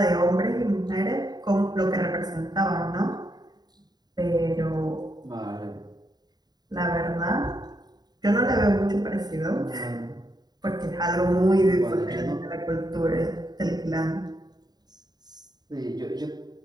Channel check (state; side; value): late; left; 0.20 ms